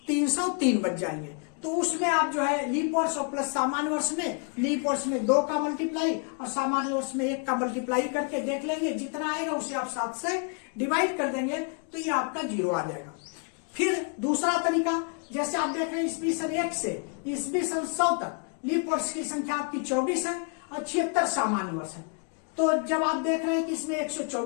303 बच जाएंगे। तो उसमें आप जो है लीप वर्ष और प्लस सामान्य वर्ष में, लीप वर्ष में 2 का मल्टीप्लाई और सामान्य वर्ष में 1 का मल्टीप्लाई करके देख लेंगे, जितना आएगा उसे आप 7 से डिवाइड कर देंगे, तो ये आपका 0 आ जाएगा। फिर दूसरा तरीका, जैसे आप देख रहे हैं ईस्वी सन 1 से ईस्वी सन 100 तक लीप वर्ष की संख्या आपकी 24 है और 76 सामान्य वर्ष है। तो जब आप देख रहे हैं कि इसमें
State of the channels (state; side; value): quieter; right; 39.1 dB